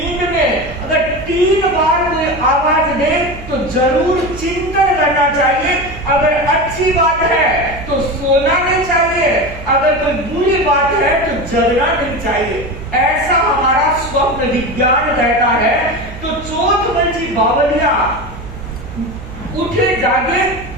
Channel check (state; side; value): noise; right; hum, 14 dB below the sound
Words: में अगर 3 बार कोई आवाज दे तो जरूर चिंतन करना चाहिए। अगर अच्छी बात है तो सोना नहीं चाहिए, अगर कोई बुरी बात है तो जगना नहीं चाहिए। ऐसा हमारा स्वप्न विज्ञान कहता है। तो चोथमल बावलिया उठे जागे